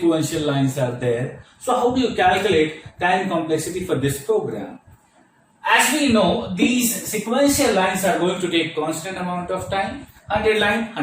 lines are there. So how do you calculate time complexity for this program? As we know, these sequential lines are going to take constant amount of time. 100 line,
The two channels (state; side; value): identical; both; correlation 1.00